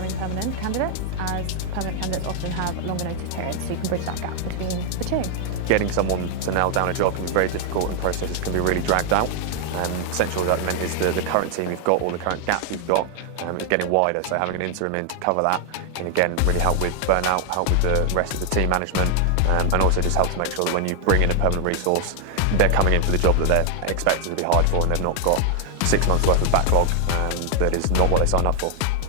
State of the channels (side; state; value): both; different; correlation 0.00